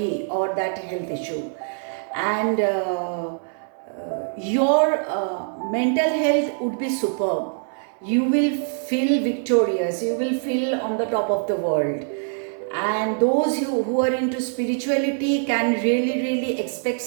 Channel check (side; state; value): left; silent; 60 dB below the other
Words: or that health issue. And your mental health would be superb. You will feel victorious, you will feel on the top of the world. And those who are into spirituality can really expect